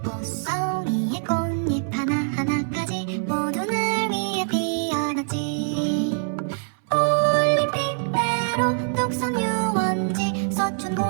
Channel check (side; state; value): left; silent; 63 dB below the other